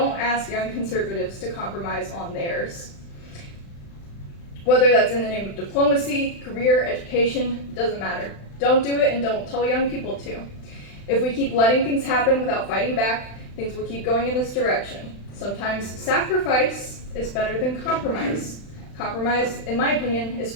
ask young conservatives to compromise on theirs. Whether that's in the name of diplomacy, career, education, doesn't matter. Don't do it, and don't tell young people to. If we keep letting things happen without fighting back, things will keep going in this direction. Sometimes sacrifice is better than compromise. Compromise, in my opinion, is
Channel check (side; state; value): right; late; 35 ms